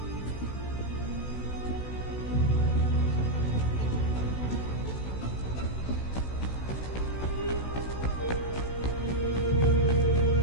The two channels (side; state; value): right; late; 16 ms